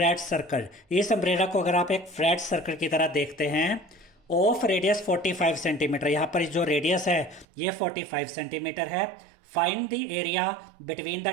circle, इस अम्ब्रेला को अगर आप एक फ्लैट सर्कल की तरह देखते हैं, ऑफ रेडियस 45 सेंटीमीटर, यहाँ पर जो रेडियस है ये 45 सेंटीमीटर है। Find the area between the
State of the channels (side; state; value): left; drops out; at 7.5 s